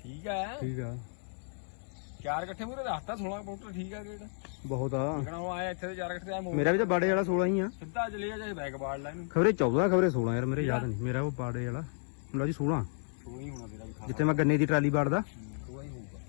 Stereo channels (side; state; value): right; silent; 56 dB below the other